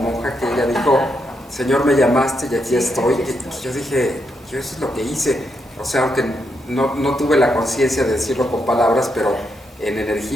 que ella dijo, Señor, me llamaste y aquí estoy. Aquí estoy. Yo dije, yo eso es lo que hice. O sea, aunque no tuve la conciencia de decirlo con palabras, pero en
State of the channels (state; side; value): normal; both; correlation 0.81